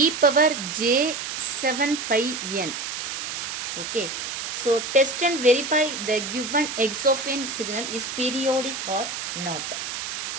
power j 7 pi n. Okay. So test and verify the given x of n signal is periodic or not.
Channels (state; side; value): noise; right; hiss, 5 dB below the sound